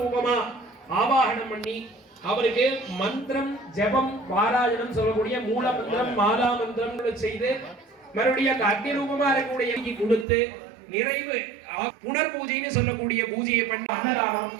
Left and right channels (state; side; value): drops out; left; at 10.2 s